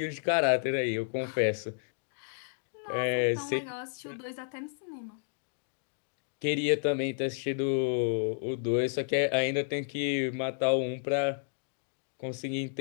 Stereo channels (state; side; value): silent; right; digital silence